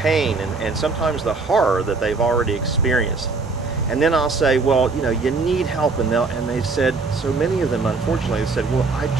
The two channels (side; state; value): left; quieter; 4.1 dB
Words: pain and sometimes the horror that they've already experienced. And then I'll say, well, you know, you need help. And they've said, so many of them, unfortunately, they said, well, I